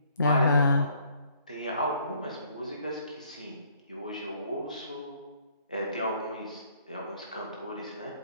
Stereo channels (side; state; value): both; inverted; correlation -0.63